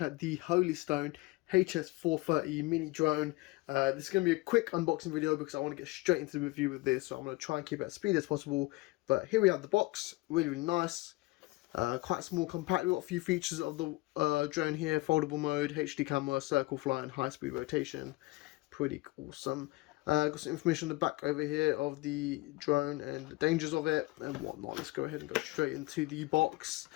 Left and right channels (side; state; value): right; quieter; 21.5 dB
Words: at the Holy Stone HS430 mini drone. This is going to be a quick unboxing video because I want to get straight into the review with this, so I'm going to try and keep it as speedy as possible. But here we have the box, really nice, quite small, compact. We've got a few features of the drone here: foldable mode, HD camera, circle flight, and high speed rotation. Pretty awesome. Got some information on the back over here of the drone and the dangers of it and whatnot. Let's go ahead and go straight into the box.